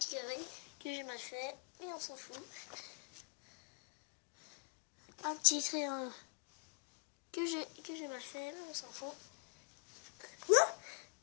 carré que j'ai mal fait, mais on s'en fout. Un petit triangle que j'ai mal fait, mais on s'en fout.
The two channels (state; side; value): quieter; right; 37.0 dB